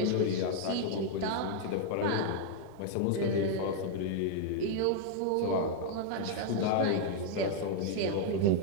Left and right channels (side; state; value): both; different; correlation 0.00